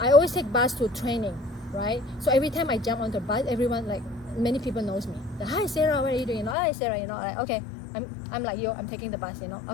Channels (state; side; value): drops out; right; at 6.6 s